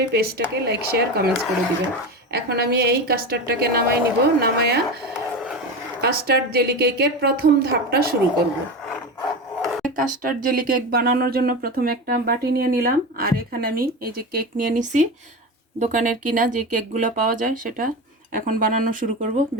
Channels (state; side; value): normal; both; correlation 0.23